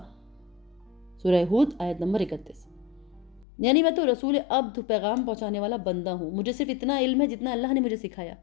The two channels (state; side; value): drops out; right; at 3.5 s